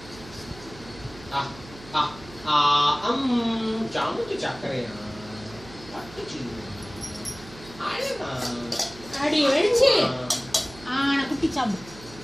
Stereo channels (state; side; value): noise; right; hum, 18 dB below the sound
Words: ஜாமுக்கு சக்கரையா அடி வெடிச்சு குட்டி சாப்பிடு.